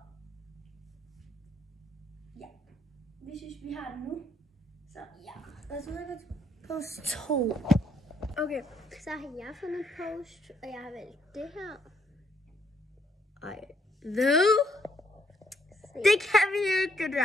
Ja. Vi synes, vi har den nu. Så ja. Og så er det post 2. Okay, så har jeg fundet post, og jeg har valgt det her. Ej. Hvad? Det kan vi ikke, det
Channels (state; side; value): normal; both; correlation 0.71